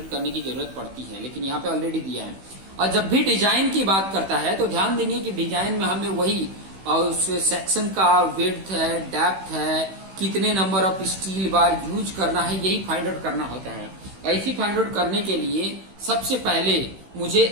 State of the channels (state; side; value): late; left; 16 ms